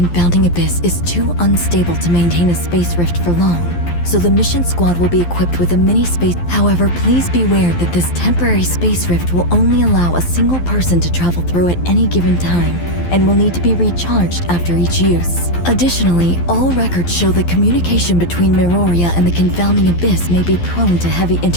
Abyss is too unstable to maintain a space rift for long, so the mission squad will be equipped with a mini space. However, please beware that this temporary space rift will only allow a single person to travel through at any given time, and will need to be recharged after each use. Additionally, all records show that communication between Miroria and the Confounding Abyss may be prone to heavy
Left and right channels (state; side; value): late; right; 12 ms